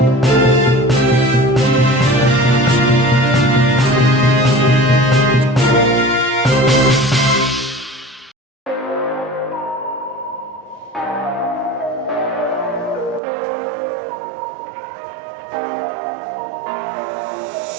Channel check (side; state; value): left; drops out; at 13.2 s